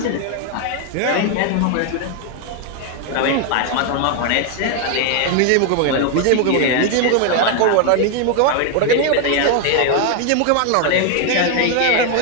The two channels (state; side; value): different; both; correlation 0.01